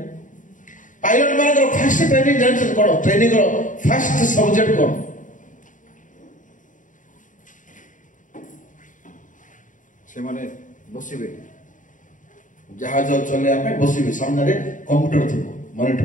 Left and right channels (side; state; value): right; late; 0.37 ms